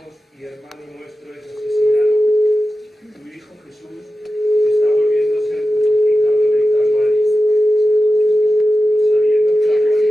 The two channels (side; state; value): both; normal; correlation 0.93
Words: y hermano nuestro es asesinado, tu Hijo Jesús está volviendo a ser crucificado en el Calvario, sabiendo que la